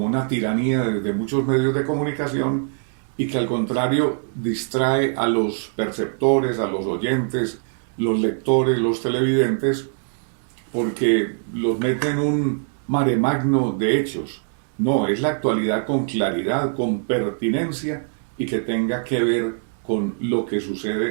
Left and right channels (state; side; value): silent; left; digital silence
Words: una tiranía desde muchos medios de comunicación y que al contrario distrae a los perceptores, a los oyentes, los lectores, los televidentes, porque los mete en un mare magno de hechos. No, es la actualidad con claridad, con pertinencia y que tenga que ver con lo que